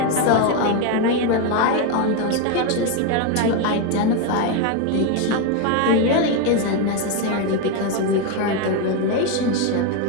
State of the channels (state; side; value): different; both; correlation 0.02